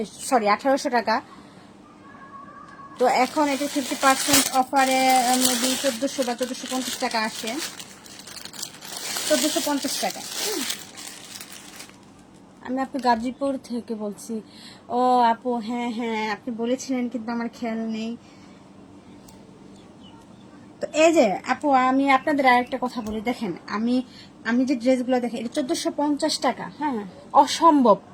সরি 1800 টাকা। তো এখন এটা 50% অফারে মেবি 1400 বা 1450 টাকা আসে, 1450 টাকা। আমি আপনি গাজীপুর থেকে বলছি। ও আপু, হ্যাঁ হ্যাঁ আপনি বলেছিলেন, কিন্তু আমার খেয়াল নেই। তো এই যে আপু, আমি আপনাদের আরেকটা কথা বলি, দেখেন আমি যে ড্রেসগুলো দেখেন, এটা 1450 টাকা। হ্যাঁ, অসম্ভব,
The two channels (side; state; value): both; identical; correlation 1.00